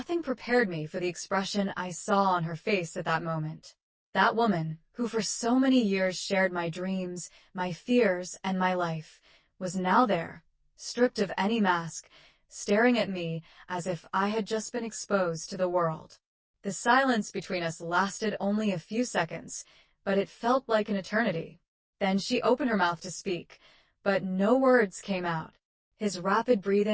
prepared me for the expression I saw on her face at that moment. That woman, who for so many years shared my dreams, my fears, and my life, was now there, stripped of any mask, staring at me as if I had just been exposed to the world. The silence between us lasted only a few seconds, but it felt like an eternity. Then she opened her mouth to speak, but no words came out. His rapid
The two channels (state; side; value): identical; both; correlation 1.00